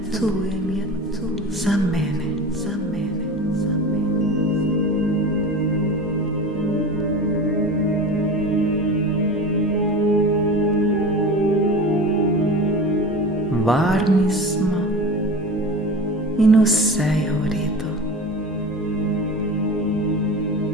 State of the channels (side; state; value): both; normal; correlation 0.32